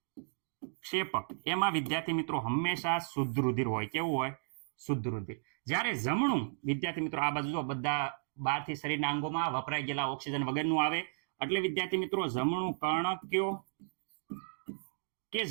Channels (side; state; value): left; silent; digital silence